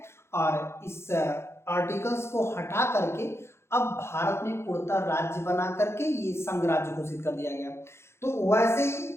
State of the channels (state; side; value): late; right; 0.12 ms